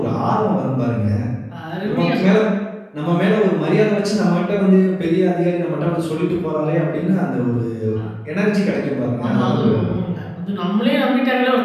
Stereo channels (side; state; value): both; identical; correlation 1.00